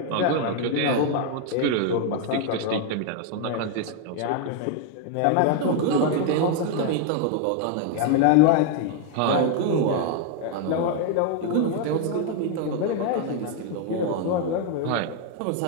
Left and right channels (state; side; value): different; both; correlation 0.00